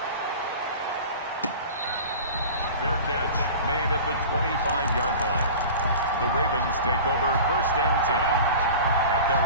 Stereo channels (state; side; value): inverted; both; correlation -0.37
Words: Fair catch made at the 25-yard line. The Ravens take over 1st and 10 at their